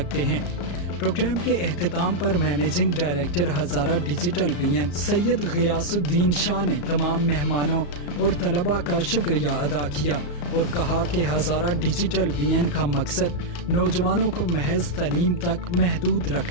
ہیں۔ پروگرام کے اختتام پر مینیجنگ ڈائریکٹر ہزارہ ڈیجیٹل وین سید غیاث الدین شاہ نے تمام مہمانوں اور طلباء کا شکریہ ادا کیا اور کہا کہ ہزارہ ڈیجیٹل وین کا مقصد نوجوانوں کو محض تعلیم تک محدود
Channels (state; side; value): late; right; 34 ms